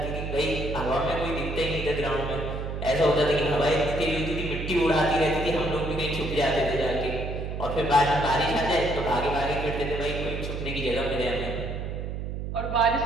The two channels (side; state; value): right; noise; hum, 5 dB below the sound